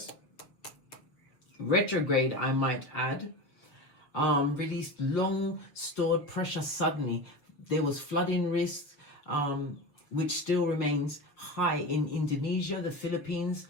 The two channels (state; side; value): late; right; 7.0 ms